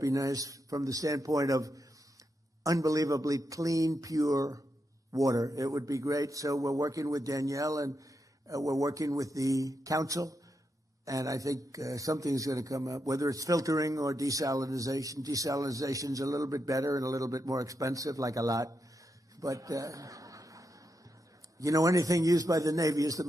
be nice from the standpoint of unbelievably clean, pure water. It would be great. So we're working with Danielle, and we're working with the council. And I think something's going to come up, whether it's filtering or desalinization. Desalinization's a little bit better and a little bit more expensive, like a lot. But, anything used by the Navy is the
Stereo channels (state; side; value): normal; both; correlation 0.84